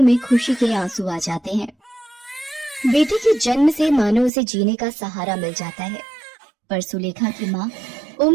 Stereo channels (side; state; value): left; drops out; at 4.3 s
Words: में खुशी के आंसू आ जाते हैं। बेटे के जन्म से मानो उसे जीने का सहारा मिल जाता है, पर सुलेखा की माँ